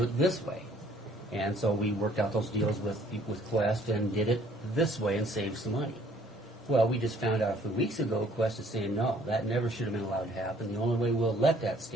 it this way. And so we worked out those deals with Quest and did it this way and saved some money. Well, we just found out a few weeks ago, Quest is saying, no, that never should have been allowed to happen. The only way we'll let that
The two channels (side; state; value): both; normal; correlation 0.59